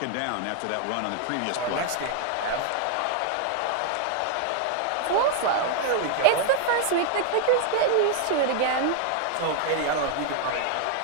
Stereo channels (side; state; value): both; different; correlation 0.00